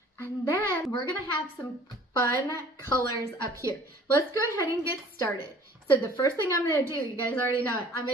And then we're gonna have some fun colors up here. Let's go ahead and get started. So the first thing I'm gonna do, you guys already know it, I'm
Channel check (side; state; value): both; normal; correlation 0.51